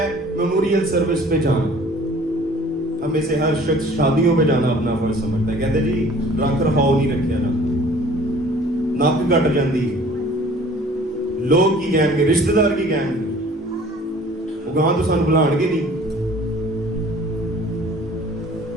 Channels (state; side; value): normal; both; correlation 0.51